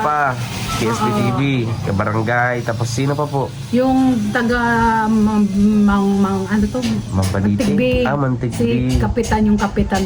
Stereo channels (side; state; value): both; identical; correlation 1.00